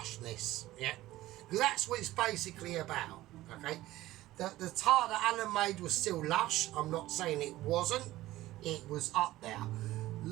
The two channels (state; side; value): quieter; left; 16.3 dB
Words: yeah? Because that's what it's basically about, okay? The tart that Alan made was still lush. I'm not saying it wasn't. It was up there.